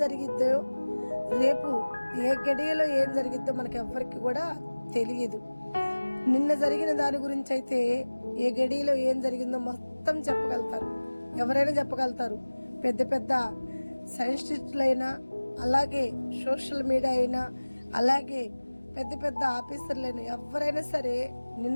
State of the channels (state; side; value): inverted; both; correlation -1.00